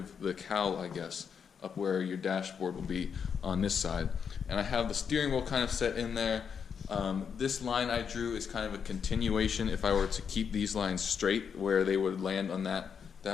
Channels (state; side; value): quieter; right; 6.9 dB